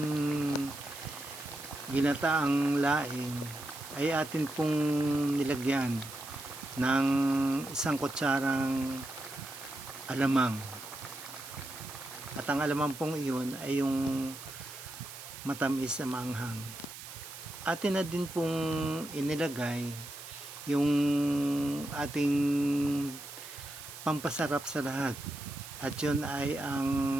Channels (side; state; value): right; noise; hiss, 13 dB below the sound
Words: ginataang laing ay atin pong nilagyan ng isang kutsarang alamang. At ang alamang pong iyon ay yung matamis na maanghang. Atin na din pong inilagay yung ating pampasarap sa lahat. At yun ay ang